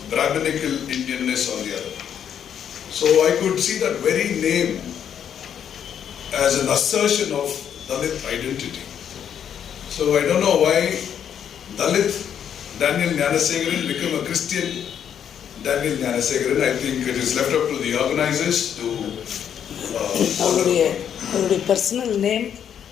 Brahminical Indianness on the other. So I could see that very name as an assertion of Dalit identity. So I don't know why Dalit Daniel GNANASEKARAN became a Christian Daniel GNANASEKARAN. I think it is left up to the organizers to அவருடைய personal name,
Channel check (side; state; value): right; quieter; 8.8 dB